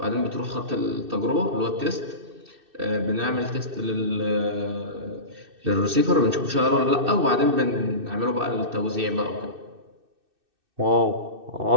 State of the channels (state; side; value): late; left; 2.6 ms